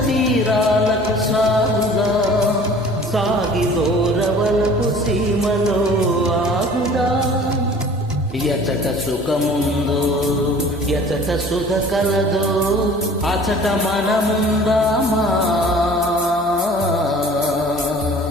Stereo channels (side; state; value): both; normal; correlation 0.47